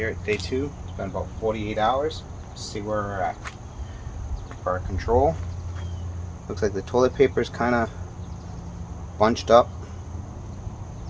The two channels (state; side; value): identical; both; correlation 1.00